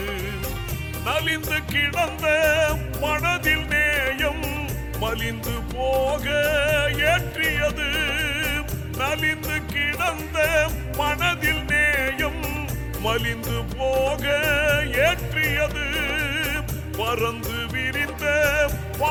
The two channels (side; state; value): both; identical; correlation 1.00